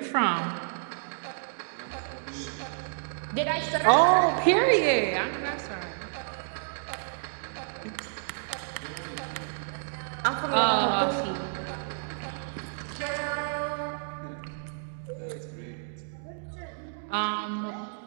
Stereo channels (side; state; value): left; silent; digital silence